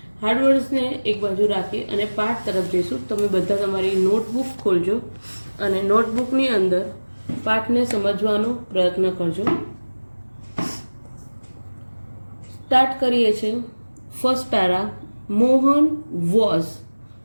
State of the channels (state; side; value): inverted; both; correlation -1.00